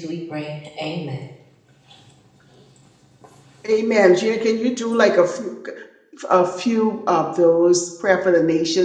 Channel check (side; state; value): both; identical; correlation 1.00